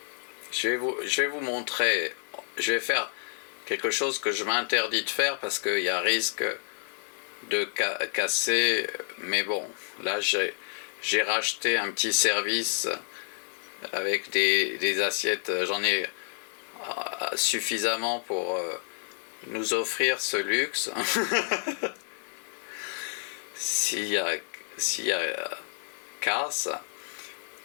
Je vais vous montrer, je vais faire quelque chose que je m'interdis de faire parce qu'il y a risque de casser, mais bon, là j'ai racheté un petit service avec des assiettes, j'en ai suffisamment pour nous offrir ce luxe. S'il y a casse,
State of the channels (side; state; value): right; silent; 58 dB below the other